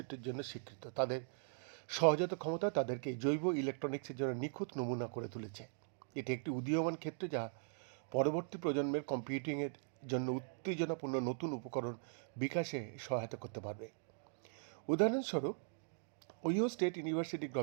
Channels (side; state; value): left; silent; digital silence